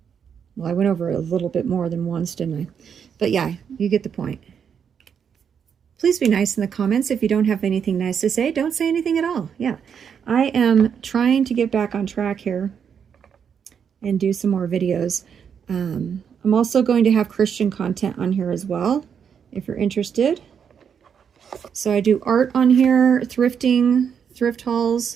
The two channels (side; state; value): left; quieter; 7.4 dB